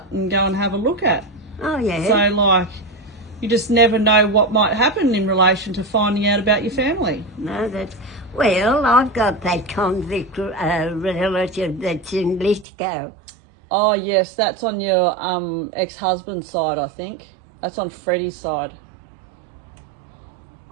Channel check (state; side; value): drops out; left; at 12.7 s